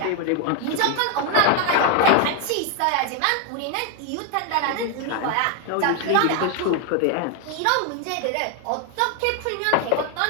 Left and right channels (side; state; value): both; different; correlation 0.01